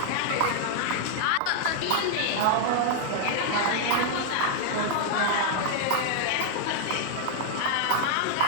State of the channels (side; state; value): both; different; correlation 0.00